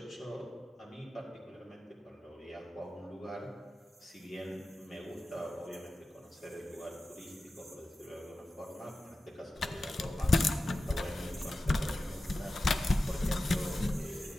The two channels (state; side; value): normal; both; correlation 0.94